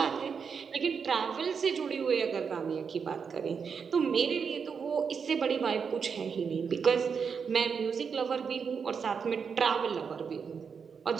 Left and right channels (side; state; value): left; quieter; 6.2 dB